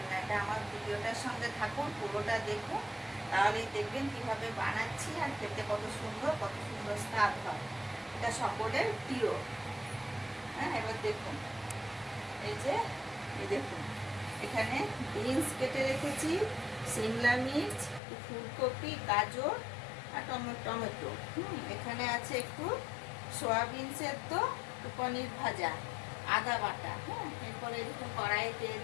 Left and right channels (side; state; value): right; drops out; at 18.0 s